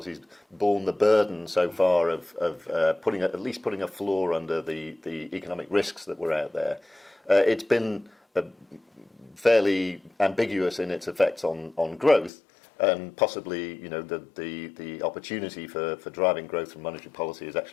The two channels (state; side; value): drops out; right; at 12.3 s